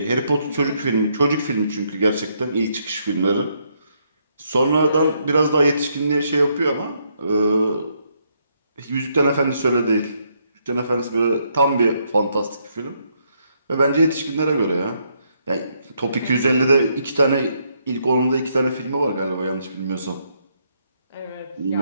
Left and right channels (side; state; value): both; inverted; correlation -0.74